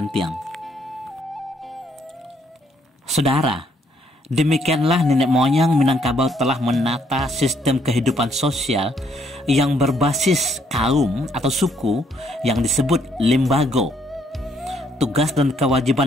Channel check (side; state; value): both; normal; correlation 0.69